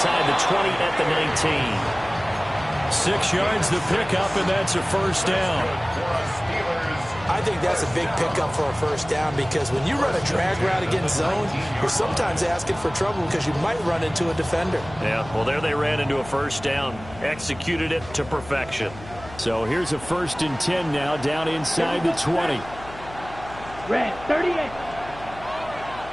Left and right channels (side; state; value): left; noise; hum, 17 dB below the sound